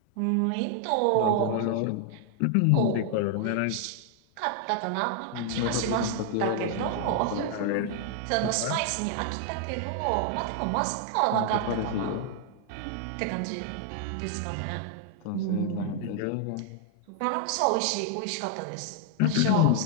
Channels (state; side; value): different; both; correlation 0.00